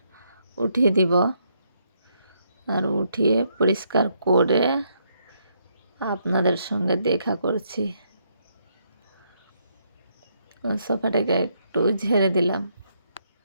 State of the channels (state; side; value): inverted; both; correlation -0.74